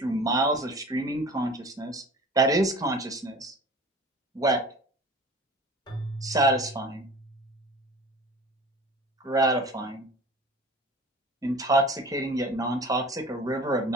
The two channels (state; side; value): normal; both; correlation 0.41